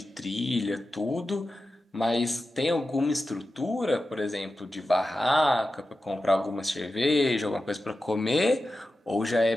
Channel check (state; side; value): normal; both; correlation 0.92